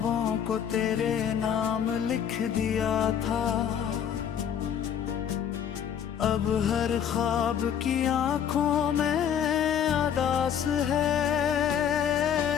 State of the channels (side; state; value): right; quieter; 8.7 dB